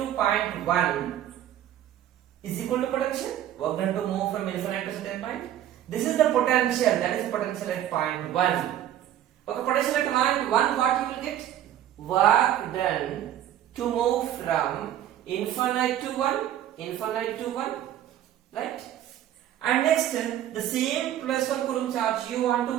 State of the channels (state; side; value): quieter; left; 11.6 dB